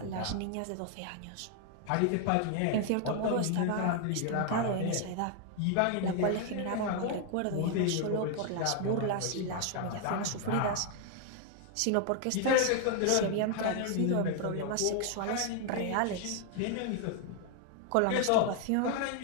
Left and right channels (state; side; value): different; both; correlation 0.00